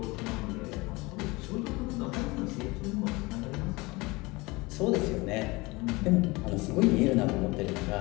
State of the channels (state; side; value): quieter; right; 23.7 dB